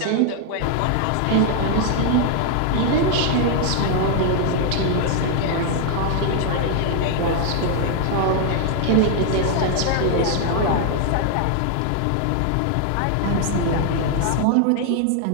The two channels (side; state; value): both; different; correlation 0.00